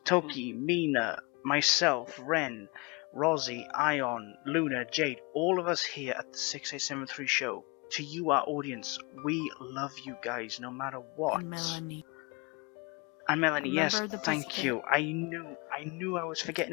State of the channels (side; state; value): right; quieter; 28.6 dB